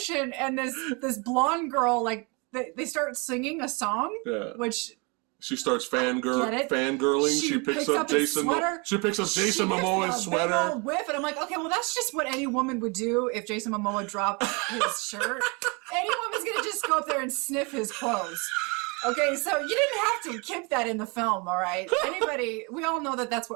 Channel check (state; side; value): quieter; left; 30.4 dB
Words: and this blonde girl, like they start singing a song, which. She starts fangirling. She picks up Jason. She picks up Jason Momoa's sweater. Big old whiff, and I'm like, okay, well, that's just what any woman would do if Jason Momoa dropped his shirt. Any woman's gonna just go up there and sniff his clothes. Okay, so you didn't have to keep that in the film, all right? We all know that that's